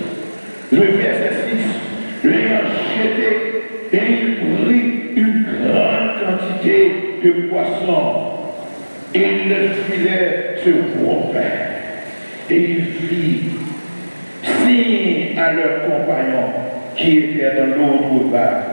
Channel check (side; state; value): both; inverted; correlation -1.00